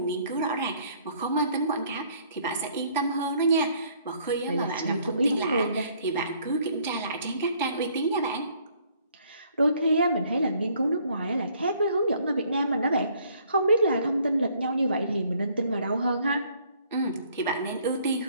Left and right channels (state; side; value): inverted; both; correlation -0.63